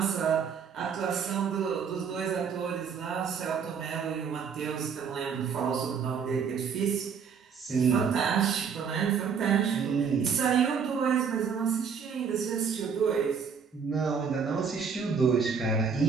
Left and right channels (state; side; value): quieter; left; 6.4 dB